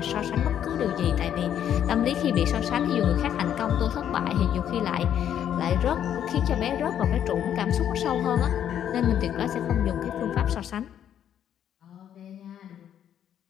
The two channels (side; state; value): right; quieter; 9.8 dB